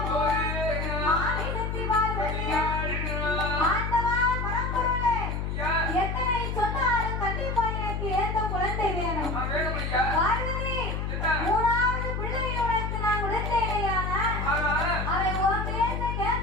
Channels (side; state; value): left; noise; hum, 2 dB below the sound